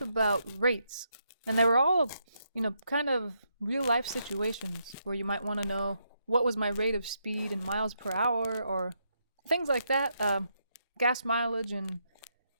about rates, and they were all, kind of real life situations where you might want to know what was my rate of speed in miles per hour or things like that, gas mileage and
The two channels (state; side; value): inverted; both; correlation -0.79